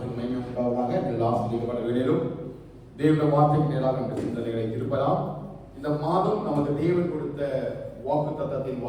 மகிமை உண்டாவதாக. எல்லா ஆசீர்வாதப்பட்ட வேளையிலும் தேவனுடைய வார்த்தைக்கு நேராக நம்முடைய சிந்தனைகளை திருப்பலாம். இந்த மாதம் நமக்கு தேவன் கொடுத்த வாக்குத்தத்தத்தின்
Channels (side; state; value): both; identical; correlation 1.00